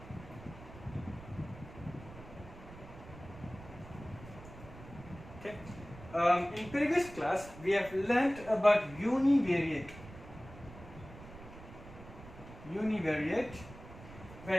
Okay. In previous class we have learnt about univariate. Univariate,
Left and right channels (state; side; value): noise; right; rumble, 16 dB below the sound